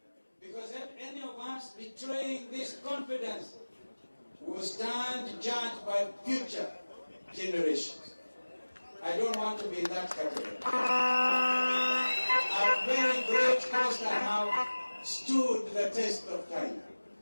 because if any of us betraying this confidence will stand judged by future generations. I don't want to be in that category. At very great cost, I have stood the test of time.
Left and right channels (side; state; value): both; inverted; correlation -1.00